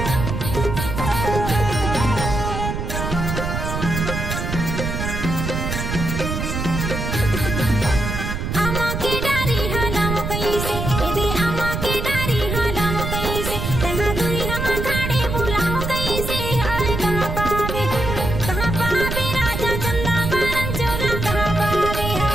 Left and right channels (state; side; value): noise; right; rumble, 3 dB below the sound